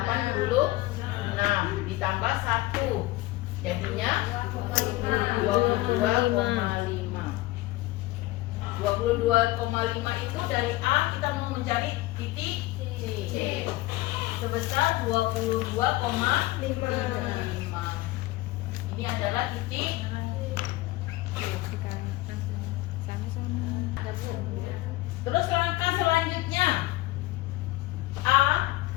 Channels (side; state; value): right; quieter; 18.7 dB